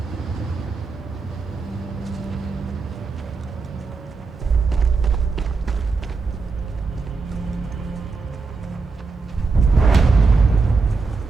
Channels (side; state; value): left; quieter; 4.3 dB